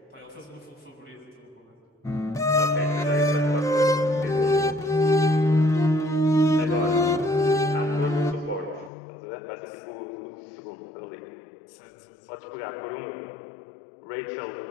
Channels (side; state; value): right; drops out; at 8.9 s